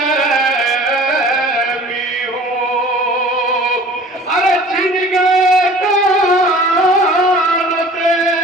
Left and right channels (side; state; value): both; normal; correlation 0.45